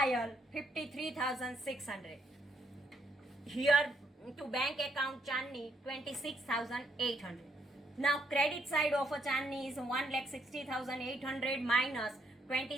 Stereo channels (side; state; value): both; normal; correlation 0.74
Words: 53,600. Here to bank account Chandni 26,800. Now credit side of a Chandni is 1,60,800 minus